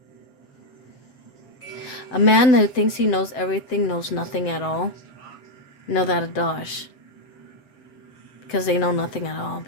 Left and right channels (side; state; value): right; late; 7.8 ms